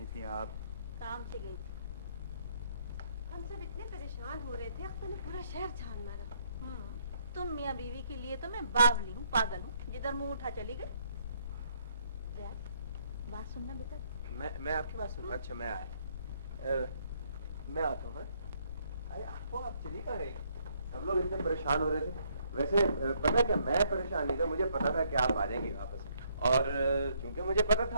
थी आप? काम से गई थी। हम सब इतने परेशान हो रहे थे, अख्तर ने पूरा शहर छान मारा। तुम मियाँ बीवी के लिए तो मैं बावली हूँ, पागल हूँ, जिधर मुंह उठा चली गई। बात सुनना बेटा। मैं आपकी बात सुन। अच्छा मैं आया, मैं आता हूँ। अरे आप चली कहाँ गई? सब लोग इतने परेशान हो रहे थे। वैसे पता क्या, मैं परेशान नहीं था, मुझे पता था कि आप आ जाएंगे वापस, और क्योंकि मुझे पता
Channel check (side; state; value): both; inverted; correlation -0.70